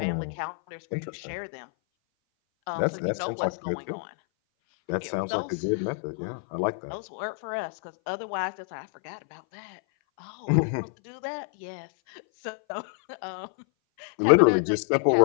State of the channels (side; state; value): right; silent; 57 dB below the other